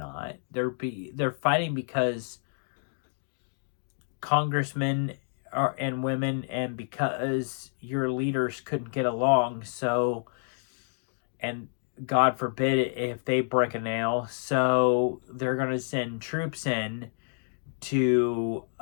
They're fighting because congressmen and women, and because your leaders couldn't get along. So, and God forbid if they break a nail, so they're going to send troops in to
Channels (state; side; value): silent; right; digital silence